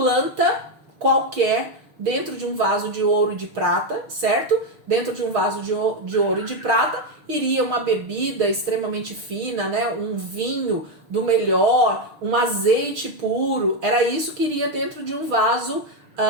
qualquer dentro de um vaso de ouro e de prata, certo? Dentro de um vaso de ouro e de prata iria uma bebida extremamente fina, né? Um vinho do melhor, um azeite puro. Era isso que iria dentro de um vaso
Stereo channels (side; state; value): left; late; 6.4 ms